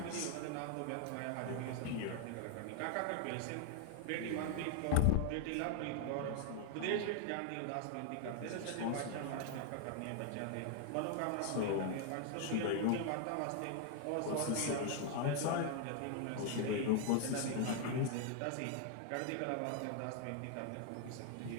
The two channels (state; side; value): different; both; correlation 0.00